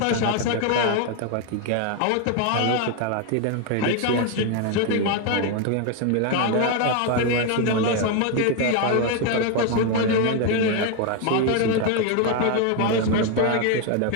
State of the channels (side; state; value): both; different; correlation 0.01